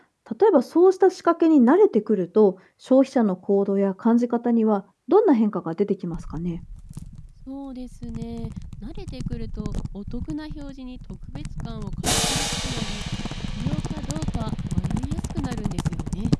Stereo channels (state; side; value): identical; both; correlation 1.00